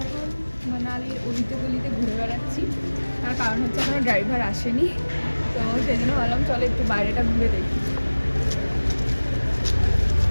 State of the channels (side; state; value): both; inverted; correlation -1.00